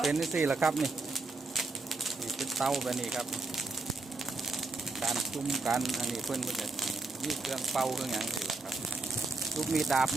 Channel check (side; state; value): left; quieter; 3.5 dB